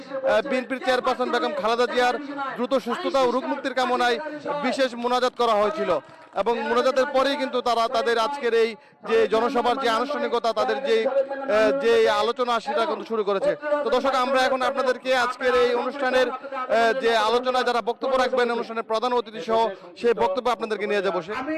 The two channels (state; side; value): identical; both; correlation 1.00